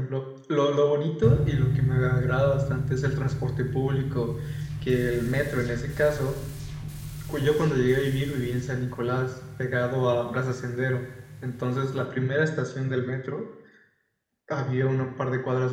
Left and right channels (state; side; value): identical; both; correlation 1.00